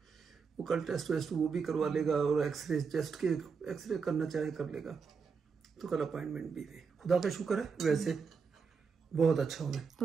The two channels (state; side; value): quieter; left; 5.5 dB